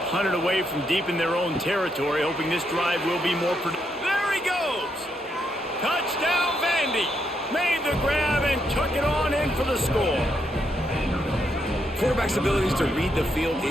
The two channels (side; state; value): both; normal; correlation 0.78